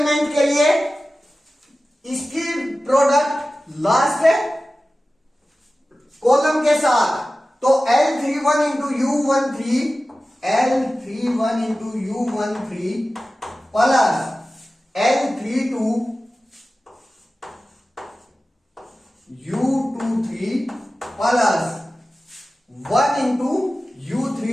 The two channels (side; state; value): both; normal; correlation 0.95